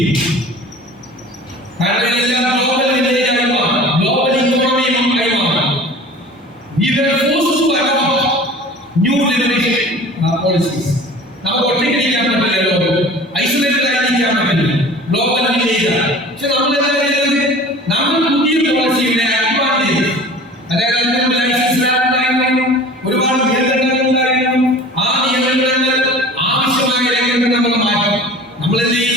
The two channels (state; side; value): normal; both; correlation 0.42